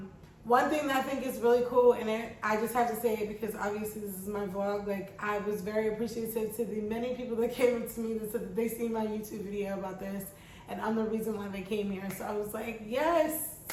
thing that I think is really cool in it, I just have to say it because obviously this is my vlog, like, I was very appreciative to the many people that came up to me that said that they seen my YouTube video about this and I'm the reason why they came here. So I was like, yes,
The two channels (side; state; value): both; identical; correlation 1.00